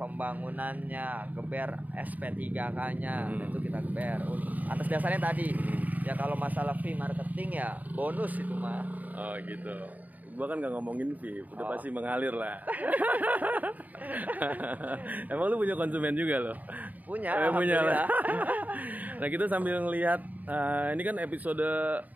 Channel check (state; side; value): late; left; 0.078 ms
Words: geber SP3K-nya, itu kita geber. Atas dasarnya tadi ya, kalau masalah fee marketing ya bonus itu mah. Oh gitu. Gua kan nggak ngomongin fee, udah pasti mengalir lah. Emang lu punya konsumen juga loh? Punya lah. Nah, kita sambil ngelihat ini kan episode